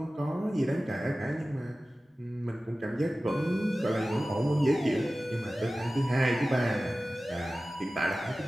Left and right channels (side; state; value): both; normal; correlation 0.96